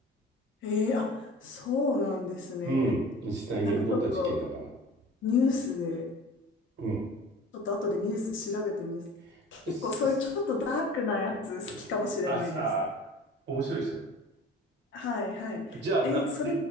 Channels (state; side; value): normal; both; correlation 0.42